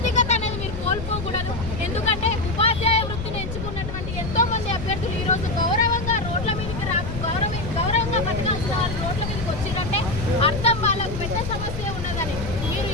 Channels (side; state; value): left; noise; rumble, 6 dB below the sound